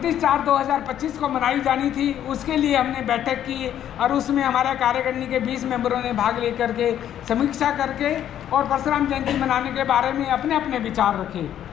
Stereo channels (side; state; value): right; quieter; 10.7 dB